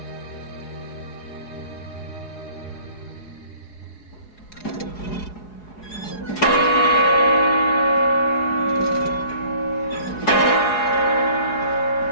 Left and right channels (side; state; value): right; late; 4.8 ms